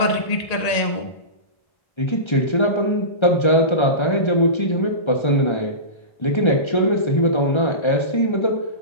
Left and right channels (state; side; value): late; right; 1.3 ms